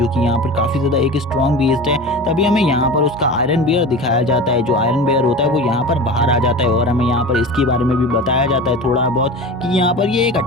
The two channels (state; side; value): normal; both; correlation 0.32